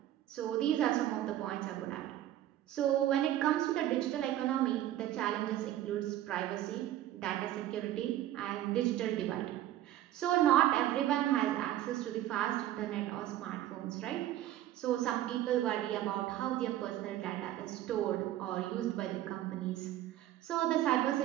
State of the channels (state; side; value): quieter; left; 13.1 dB